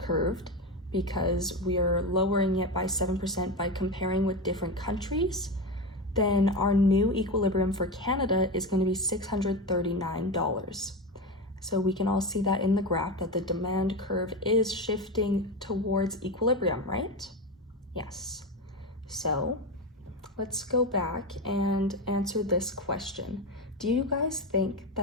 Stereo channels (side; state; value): both; normal; correlation 0.18